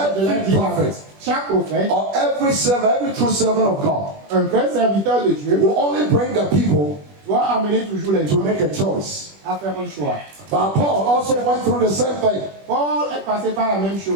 prophet Chaque prophète, or every servant, every true servant of God un vrai serviteur de Dieu, will only bring the people doit amener toujours les to gens make a choice. à faire un choix. But Paul also went through the same thing. Paul est passé par la même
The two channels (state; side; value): late; left; 21 ms